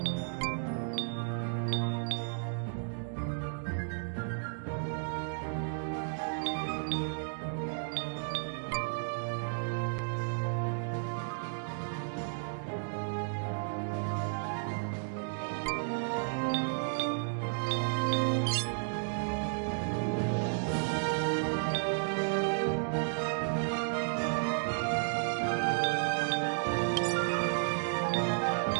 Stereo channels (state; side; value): silent; left; digital silence